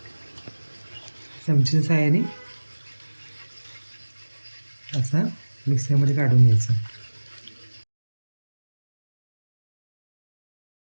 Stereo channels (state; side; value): inverted; both; correlation -1.00